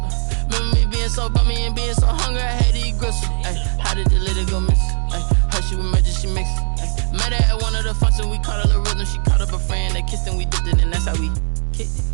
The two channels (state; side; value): silent; left; 57 dB below the other